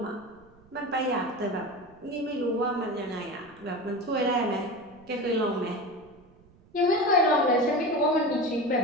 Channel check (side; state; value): right; noise; rumble, 28 dB below the sound